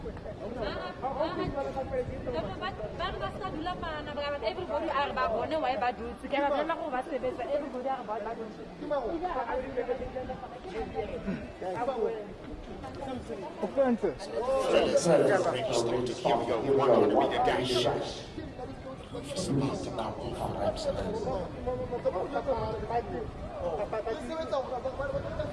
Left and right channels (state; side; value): identical; both; correlation 1.00